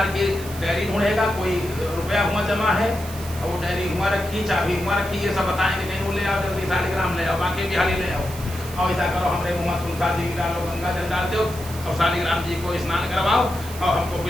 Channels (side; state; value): right; noise; hiss, 14 dB below the sound